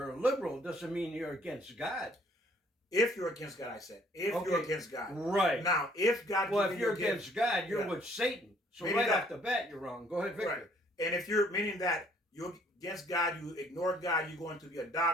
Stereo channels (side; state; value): both; normal; correlation 0.62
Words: liberal doesn't mean you're against God. If you're against God, I said, if you're Okay, against God. right. Now, if God Well, gives if you you're a gift, against God, you're yeah. with Satan. So Meaning right that- off the bat, you're wrong. Go ahead, Victor. Right. And if you're meaning that you're against God, you ignore God, you're going to be a